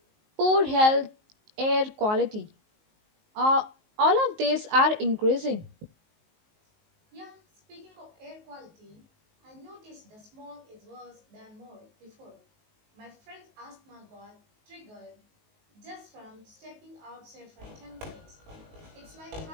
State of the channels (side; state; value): left; late; 19 ms